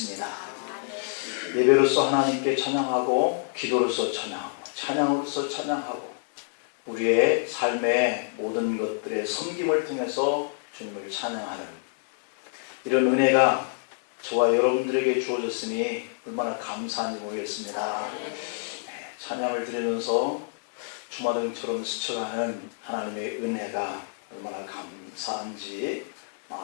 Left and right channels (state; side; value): silent; right; digital silence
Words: 예배로서 하나님께 찬양하고, 기도로서 찬양하고, 찬양으로서 찬양하고, 우리의 삶의 모든 것들의 섬김을 통해서 주님을 찬양하는 이런 은혜가 저와 여러분들에게 주어졌으니 얼마나 감사한지 모르겠습니다. 찬양을 드리면서 주마등처럼 스쳐가는 하나님의 은혜가 얼마나 감사한지